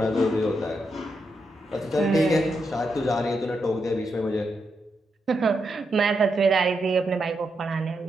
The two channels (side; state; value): both; normal; correlation 0.83